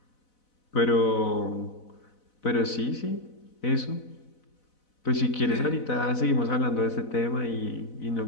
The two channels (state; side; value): late; right; 4.0 ms